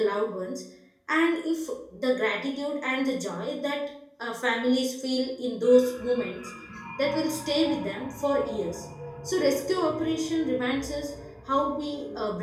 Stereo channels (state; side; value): identical; both; correlation 1.00